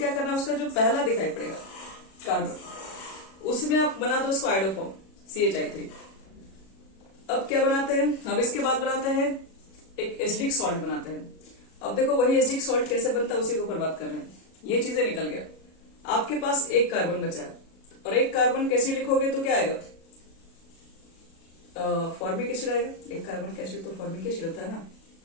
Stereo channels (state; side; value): late; right; 37 ms